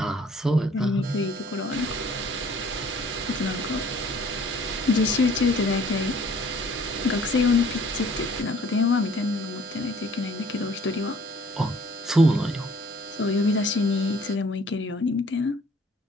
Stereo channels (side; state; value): both; normal; correlation 0.56